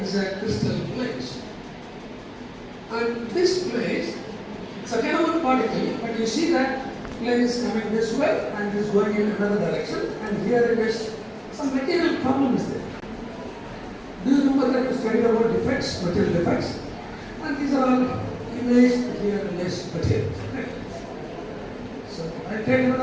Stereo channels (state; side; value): identical; both; correlation 1.00